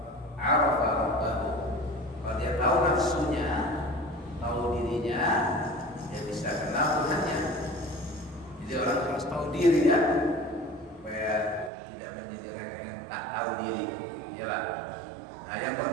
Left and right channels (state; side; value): drops out; left; at 11.7 s